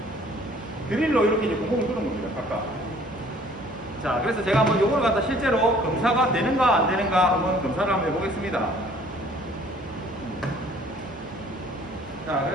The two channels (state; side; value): normal; both; correlation 0.56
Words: 드릴로 이렇게 이제 구멍을 뚫은 겁니다. 각각. 자, 그래서 제가 한번 요걸 갖다 실제로 검사가 되는가 안 되는가 한번 검사를 한번 해보겠습니다. 자,